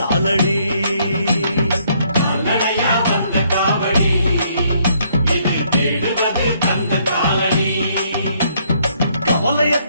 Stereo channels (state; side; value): inverted; both; correlation -0.68